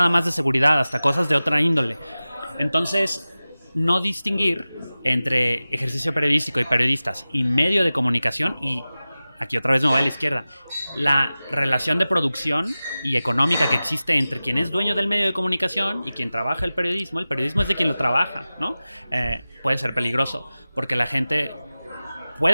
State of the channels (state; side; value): inverted; both; correlation -0.96